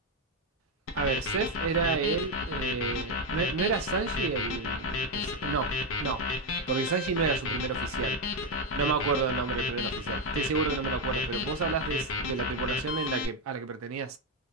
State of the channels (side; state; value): both; normal; correlation 0.06